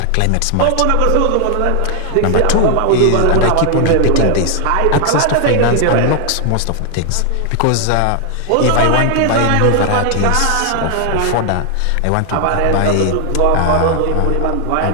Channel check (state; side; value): different; both; correlation 0.00